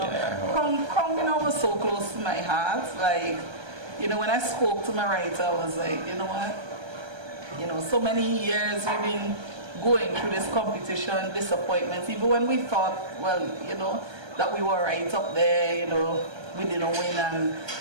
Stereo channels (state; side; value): late; left; 1.2 ms